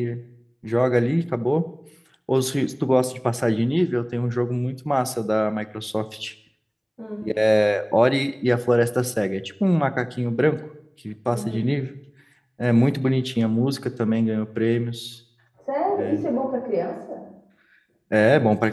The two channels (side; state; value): both; identical; correlation 1.00